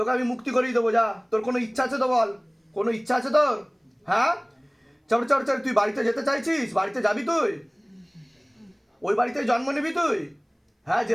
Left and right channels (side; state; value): both; identical; correlation 1.00